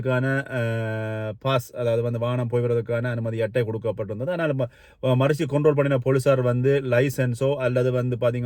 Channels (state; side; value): identical; both; correlation 1.00